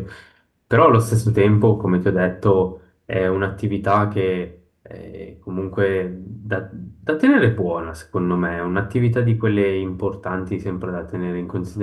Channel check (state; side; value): identical; both; correlation 1.00